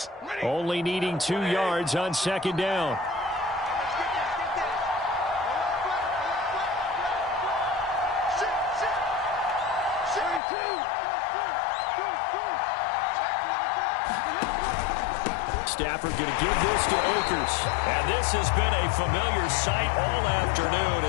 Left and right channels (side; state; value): right; drops out; at 10.4 s